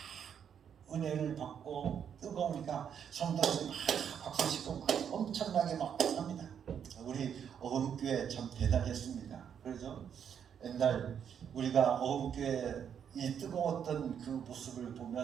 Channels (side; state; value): left; quieter; 8.2 dB